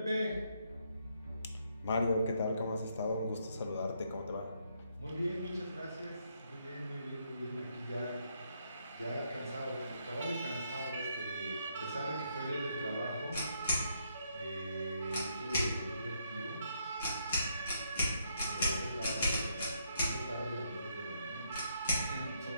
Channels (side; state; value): both; inverted; correlation -0.75